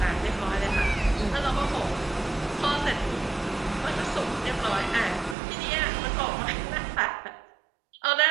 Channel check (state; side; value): drops out; left; at 5.4 s